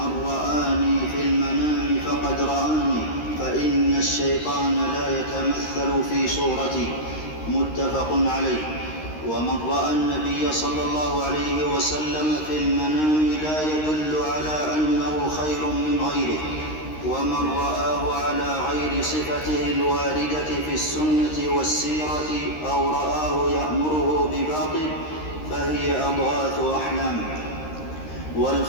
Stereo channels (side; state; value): right; late; 13 ms